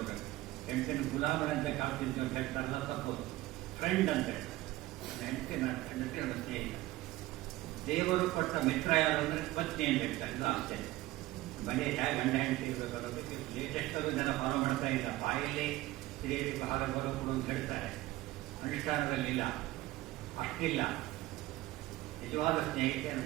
ಹೆಂಡತಿನ ಗುಲಾಮನಂತೆ ಕಾಡ್ತಿದ್ವಿ ಅಂತ ಹೇಳ್ತಾರಲ್ಲ, ತಪ್ಪೋದು. ಫ್ರೆಂಡ್ ಅಂತ ಹೇಳ್ತಾರೆ. ಹೆಂಡತಿ ನನ್ನ ಸ್ನೇಹಿತ. ದೇವರು ಕೊಟ್ಟ ಮಿತ್ರ ಯಾರು ಅಂದರೆ ಪತ್ನಿ ಅಂತ ಹೇಳ್ತಾರೆ. ಇದು ಆಶ್ಚರ್ಯ. ಮನೆ ಹೇಗೆ ಗಂಡ ಹೆಂಡತಿ ಇರಬೇಕು ಅನ್ನೋದಕ್ಕೆ ಲೇಟೆಸ್ಟಲ್ಲೂ ಜನ ಫಾಲೋ ಮಾಡ್ತಾ ಇಲ್ಲ. ಬಾಯಲ್ಲಿ ಸ್ತ್ರೀಯರಿಗೆ ಆಹಾರ ಬರೋದು ಅಂತ ಹೇಳ್ತಾರೆ, ಅನುಷ್ಠಾನದಲ್ಲಿ ಇಲ್ಲ, ಅಷ್ಟಿಲ್ಲ. ನಿಜವಾದ ಸ್ನೇಹಿತೆ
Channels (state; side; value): quieter; left; 17.6 dB